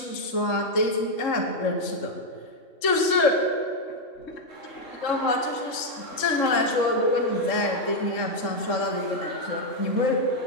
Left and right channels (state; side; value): late; right; 3.6 ms